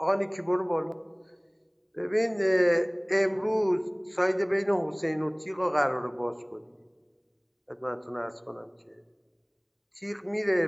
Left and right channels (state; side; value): identical; both; correlation 1.00